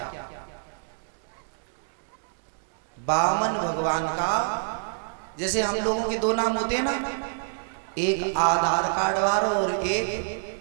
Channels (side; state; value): left; silent; digital silence